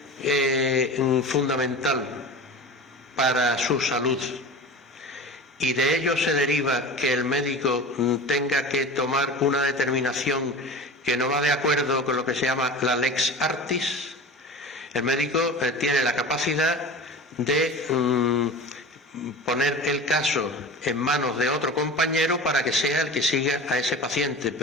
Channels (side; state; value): both; normal; correlation 0.33